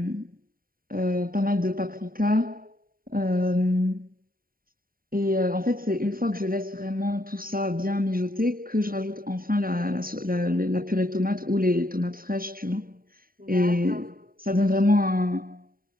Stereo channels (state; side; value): late; left; 0.42 ms